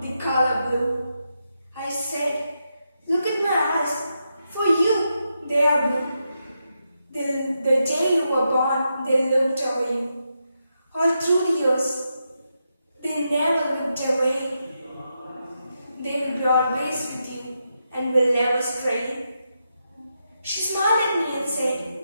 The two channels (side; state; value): both; inverted; correlation -0.85